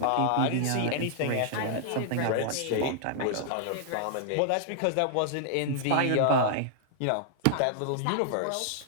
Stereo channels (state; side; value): different; both; correlation -0.01